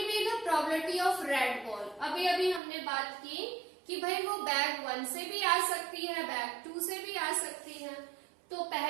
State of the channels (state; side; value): drops out; left; at 2.6 s